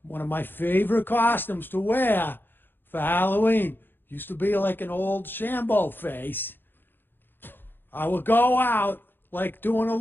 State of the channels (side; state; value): right; late; 0.098 ms